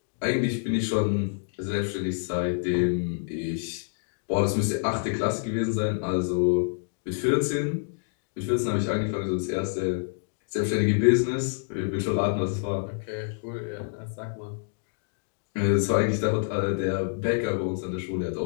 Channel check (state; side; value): silent; right; digital silence